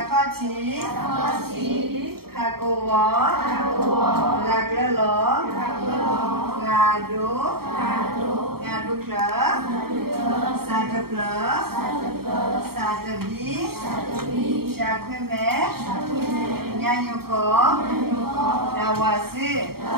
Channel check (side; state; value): left; late; 0.95 ms